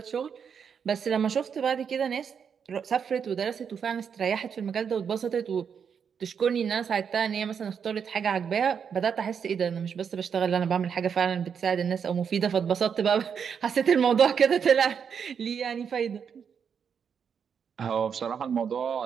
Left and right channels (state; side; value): quieter; left; 7.0 dB